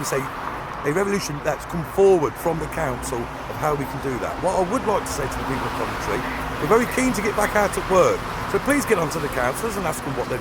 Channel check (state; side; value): identical; both; correlation 1.00